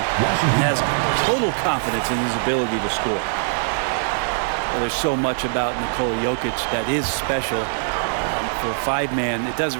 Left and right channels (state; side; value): silent; left; digital silence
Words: has total confidence in his ability to score? Well, there's so much about Nikola Jokic that is special. For a five-man, it